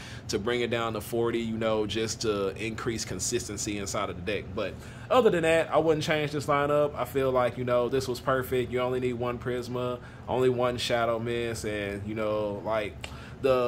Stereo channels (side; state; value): both; identical; correlation 1.00